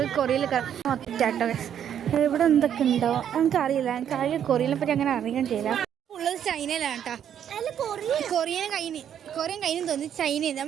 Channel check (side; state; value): left; quieter; 9.4 dB